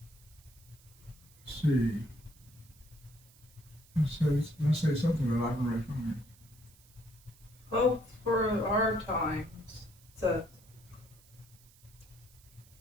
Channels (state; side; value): noise; right; hiss, 26 dB below the sound